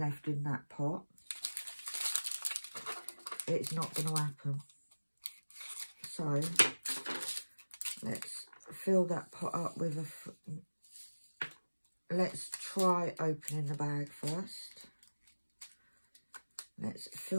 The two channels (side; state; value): both; inverted; correlation -1.00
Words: in that pot, it's not going to happen. So let's fill that pot up with a... Let's try opening the bag first. Let's